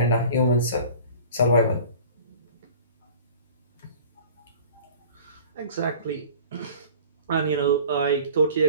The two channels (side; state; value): both; inverted; correlation -0.44